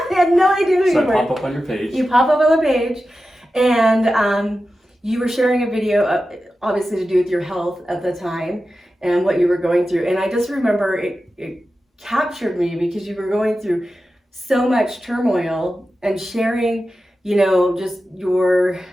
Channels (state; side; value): normal; both; correlation 0.93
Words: I had no idea who you were. So I pop up on your page. You pop up on the page, and you were sharing a video, obviously to do with your health at the time and what you were going through. And I just remember it captured me because you were going through so much turmoil and sharing, just your